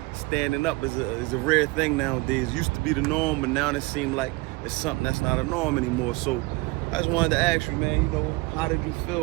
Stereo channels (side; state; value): left; quieter; 23.7 dB